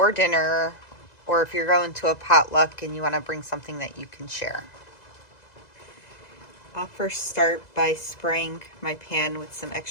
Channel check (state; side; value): late; right; 2.0 ms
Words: dinner, or if you're going to a potluck and you want to bring something that you can share. I'll first start by spraying my pan with some